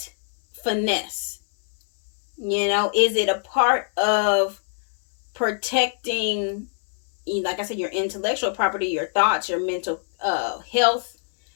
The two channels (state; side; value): silent; right; digital silence